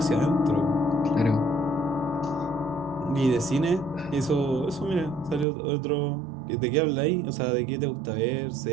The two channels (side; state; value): left; drops out; at 5.5 s